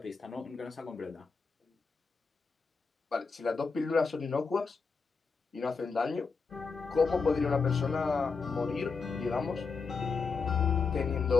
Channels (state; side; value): quieter; right; 4.8 dB